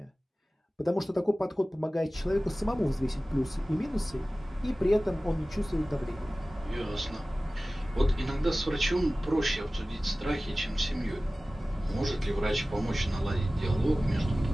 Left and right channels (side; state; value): both; normal; correlation 0.97